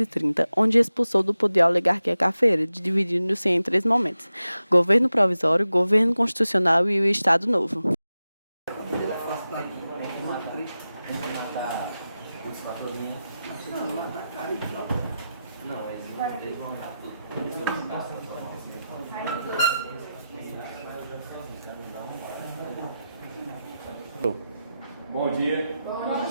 onde expulsou do poder a oligarquia cafeira, dividindo-se em três momentos: governo provisório, governo constitucional e o Estado Novo. Bom dia. Bom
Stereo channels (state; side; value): inverted; both; correlation -0.92